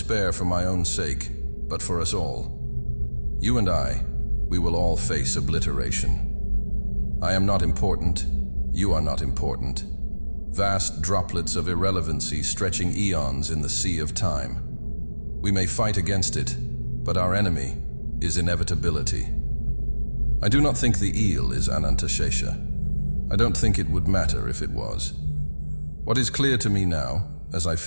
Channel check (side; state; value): both; inverted; correlation -1.00